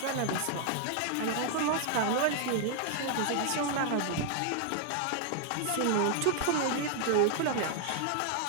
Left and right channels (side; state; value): both; different; correlation 0.00